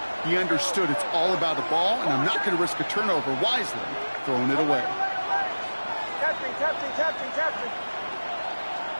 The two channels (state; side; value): inverted; both; correlation -1.00